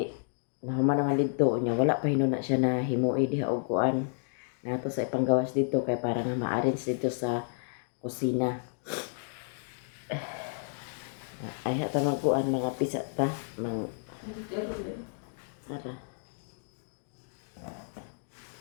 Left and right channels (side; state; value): right; silent; digital silence